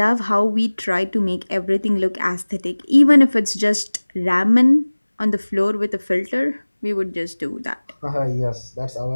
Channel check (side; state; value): both; inverted; correlation -1.00